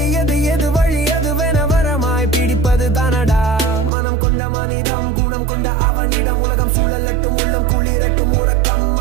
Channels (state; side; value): drops out; left; at 3.9 s